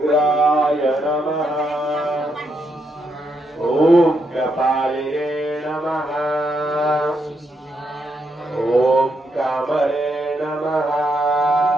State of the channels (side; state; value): both; normal; correlation 0.79